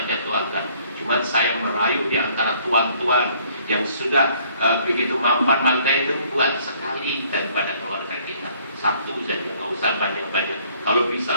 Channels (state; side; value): inverted; both; correlation -0.61